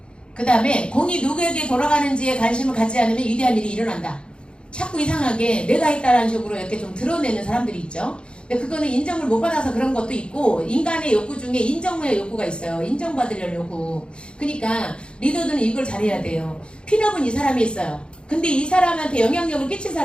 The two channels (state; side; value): late; right; 0.054 ms